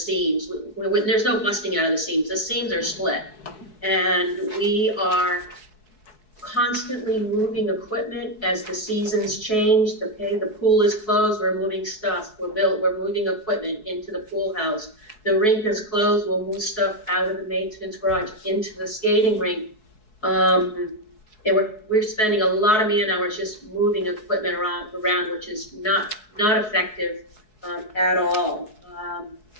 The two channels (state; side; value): late; right; 4.7 ms